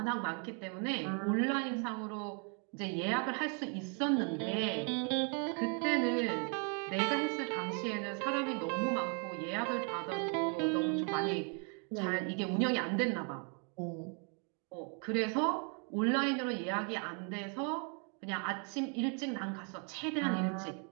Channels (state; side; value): quieter; left; 38.8 dB